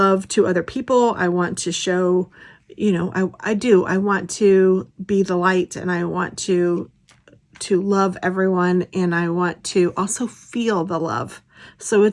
to other people. I want to show, you know, I want to be the light, and I want to love everyone, and I want to also feel the love. So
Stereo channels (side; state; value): both; identical; correlation 1.00